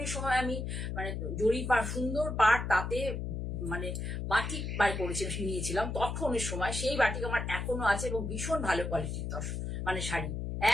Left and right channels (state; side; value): noise; left; hum, 3 dB below the sound